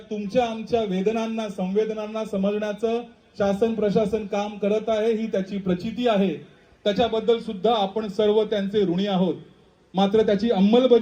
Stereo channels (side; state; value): both; identical; correlation 1.00